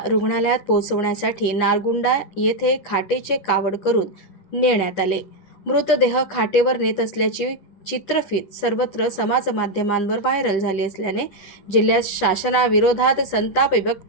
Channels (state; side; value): late; right; 10 ms